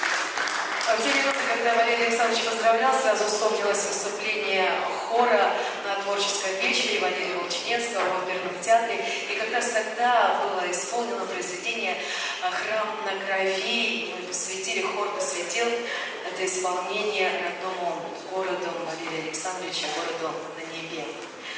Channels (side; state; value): both; identical; correlation 1.00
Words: В те минуты, когда Валерий Александрович поздравлял, сразу вспомнилось выступление хора на творческом вечере Валерия Волчинецкого в оперном театре. И как раз тогда было исполнено произведение «Храм на крови». Мы посвятили, хор посвятил это исполнение родному городу Валерия Александровича, городу на небе.